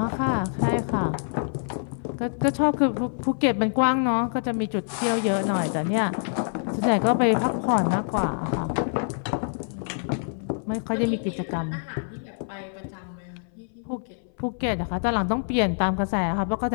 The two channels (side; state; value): right; silent; 59 dB below the other